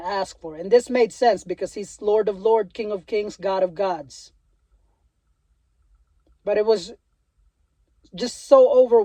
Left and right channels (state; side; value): identical; both; correlation 1.00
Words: for." And this made sense because he's Lord of Lords, King of Kings, God of Gods. But it was just so